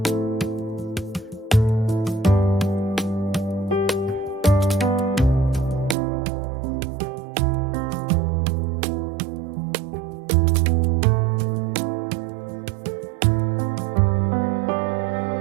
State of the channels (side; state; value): left; drops out; at 6.0 s